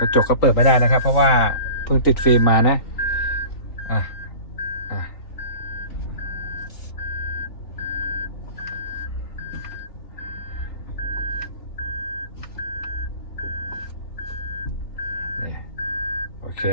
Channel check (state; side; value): late; right; 3.4 ms